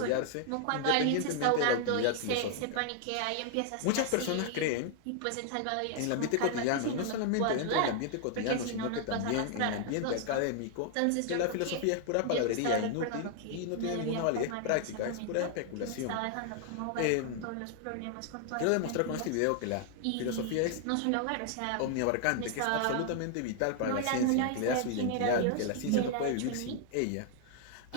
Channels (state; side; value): different; both; correlation 0.00